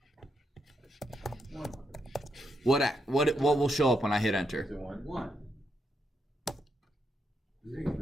What will show up when I hit enter? Is it 1? 1.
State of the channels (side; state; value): both; normal; correlation 0.81